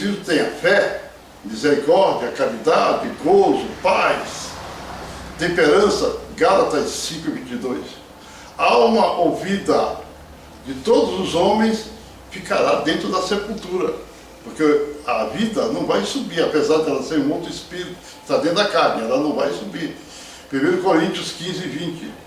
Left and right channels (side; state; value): both; identical; correlation 1.00